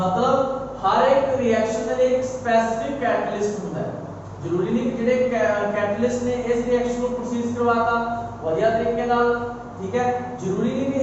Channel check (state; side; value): identical; both; correlation 1.00